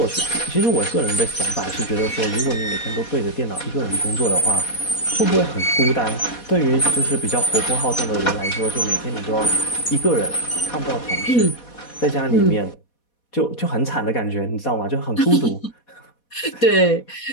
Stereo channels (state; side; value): late; right; 4.2 ms